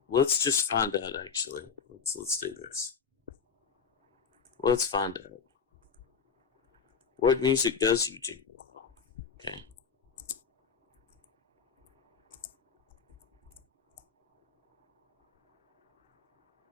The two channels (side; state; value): right; quieter; 6.1 dB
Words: let's just find out. Actually, let's do this. Let's find out what music does YouTube allow. Okay.